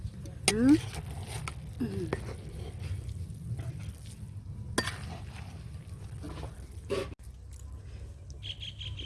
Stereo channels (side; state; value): both; identical; correlation 1.00